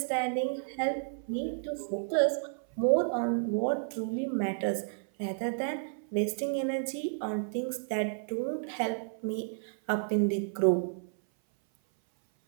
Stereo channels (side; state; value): left; silent; 57 dB below the other